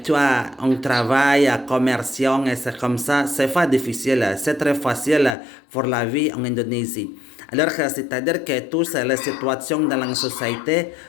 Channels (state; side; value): drops out; right; at 5.4 s